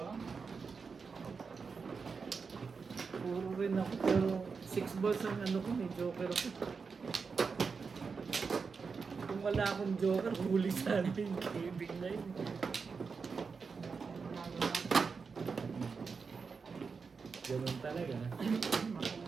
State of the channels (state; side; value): quieter; left; 5.2 dB